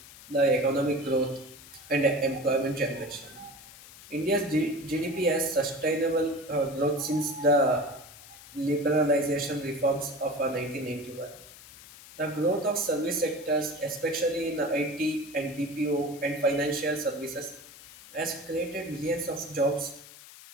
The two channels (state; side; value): noise; left; hiss, 18 dB below the sound